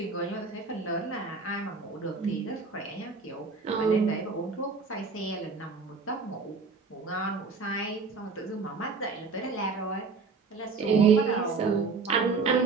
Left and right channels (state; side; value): quieter; left; 4.6 dB